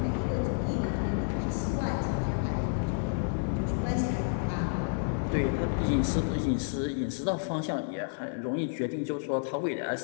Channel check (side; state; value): right; silent; 58 dB below the other